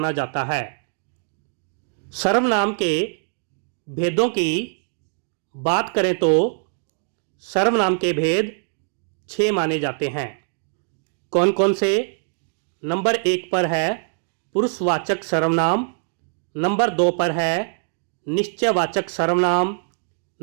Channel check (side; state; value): left; silent; 63 dB below the other